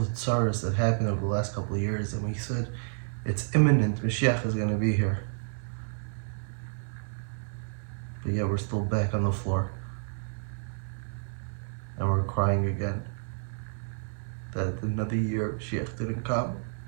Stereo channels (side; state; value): left; silent; 56 dB below the other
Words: tsaras that happened over the last couple of years, and we said, it's imminent, Mashiach is going to be here. But yet we're still back on the floor. And we're crying again that another year of Mashiach didn't come,